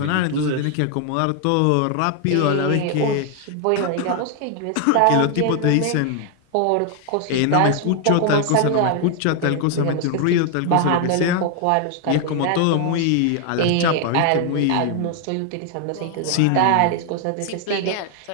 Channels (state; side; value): different; both; correlation 0.00